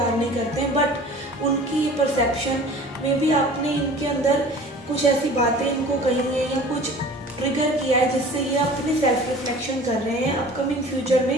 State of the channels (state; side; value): normal; both; correlation 0.44